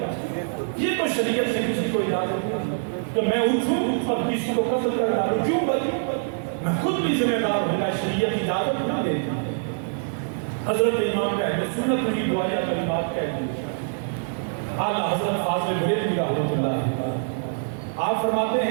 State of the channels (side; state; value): left; silent; digital silence